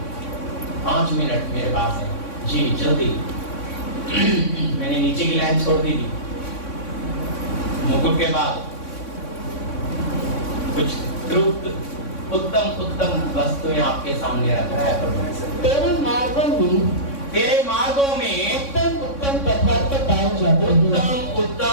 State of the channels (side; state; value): right; late; 3.6 ms